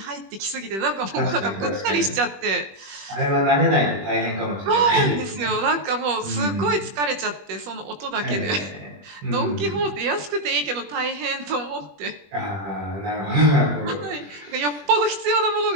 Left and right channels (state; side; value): late; left; 21 ms